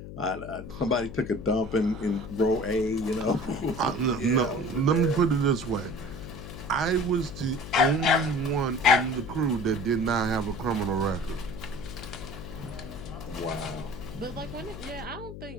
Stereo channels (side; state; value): left; noise; hum, 11 dB below the sound